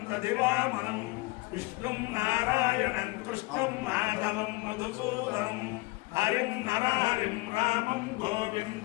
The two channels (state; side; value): quieter; right; 22.6 dB